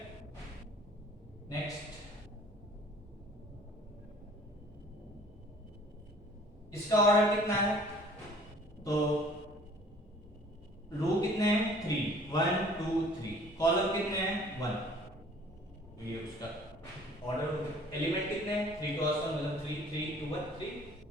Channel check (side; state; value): both; normal; correlation 0.52